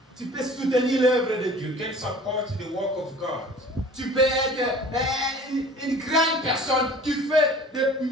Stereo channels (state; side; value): normal; both; correlation 0.46